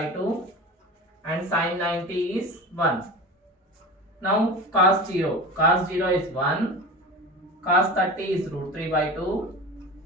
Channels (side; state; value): both; normal; correlation 0.31